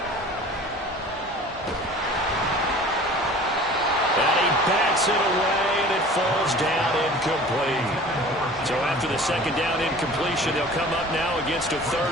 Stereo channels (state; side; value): normal; both; correlation 0.44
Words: And he backs it away, and it falls down incomplete. So after the 2nd down incompletion, they'll come up now against a